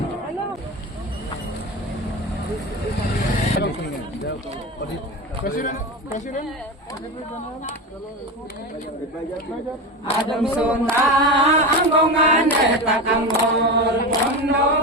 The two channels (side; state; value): both; normal; correlation 0.22